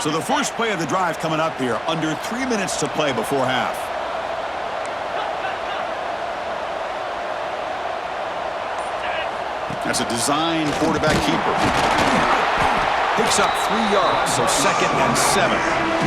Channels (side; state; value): both; identical; correlation 1.00